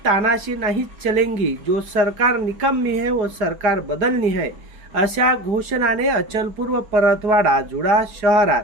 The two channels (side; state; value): left; late; 4.8 ms